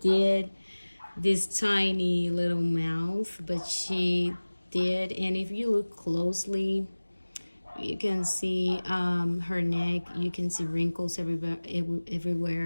this tiny little mouth, but she did. And if you look closely, you can see her neck. You can see wrinkles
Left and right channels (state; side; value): inverted; both; correlation -1.00